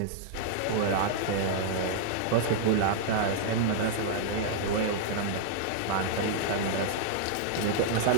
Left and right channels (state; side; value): different; both; correlation -0.01